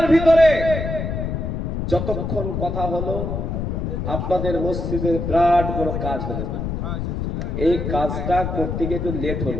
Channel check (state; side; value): noise; left; rumble, 3 dB below the sound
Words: ভিতরে যতক্ষণ কথা হলো আপনাদের মসজিদের বিরাট বড় কাজ হলো। এই কাজটা করতে গিয়ে একটু লেট